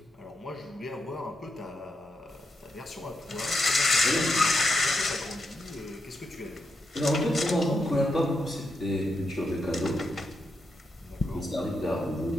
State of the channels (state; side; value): normal; both; correlation 0.83